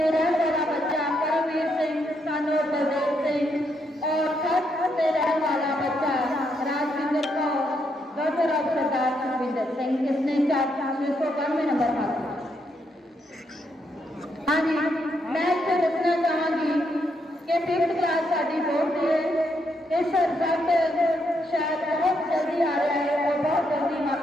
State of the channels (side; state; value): both; normal; correlation 0.78